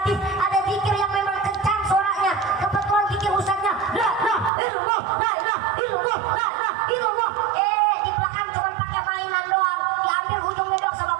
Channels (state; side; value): drops out; left; at 4.5 s